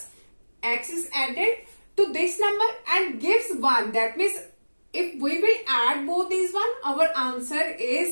x is added to this number and gives 1. That means if we will add both these one, our answer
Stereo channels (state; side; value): inverted; both; correlation -1.00